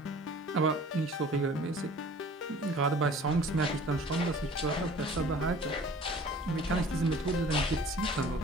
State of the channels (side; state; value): both; normal; correlation 0.48